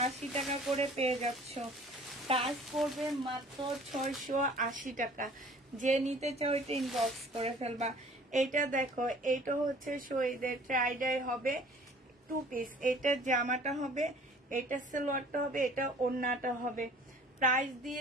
টাকা করে পেয়ে যাচ্ছ। প্রাইস পড়বে মাত্র 680 টাকা। যে নিতে চাও এটা ইনবক্স করে ফেলবা। এইটা দেখো, এইটা হচ্ছে শহীদের টাইডাই হবে 2 পিস। এটা জামাটা হবে, এটা সালোয়ারটা হবে, এটা ওড়নাটা হবে। প্রাইস দিয়ে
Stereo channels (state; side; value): normal; both; correlation 0.51